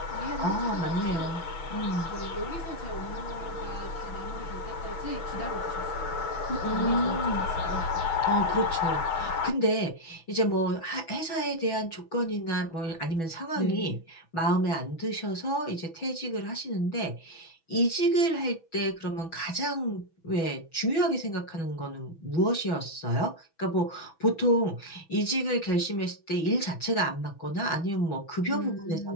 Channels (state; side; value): late; right; 6.1 ms